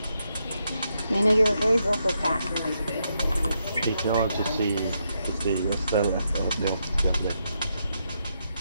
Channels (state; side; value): inverted; both; correlation -0.81